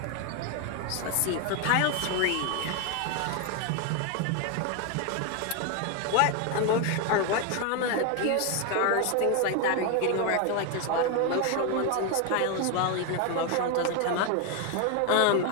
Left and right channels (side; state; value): both; different; correlation 0.01